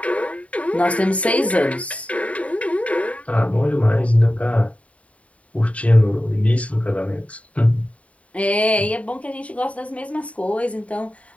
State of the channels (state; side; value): late; right; 0.066 ms